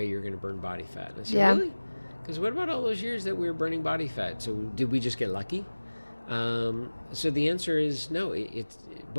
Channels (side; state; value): both; inverted; correlation -1.00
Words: you're going to burn body fat. And I say, really? Because what about all those years that we were burning body fat? So did we just get lucky? So the answer is no. It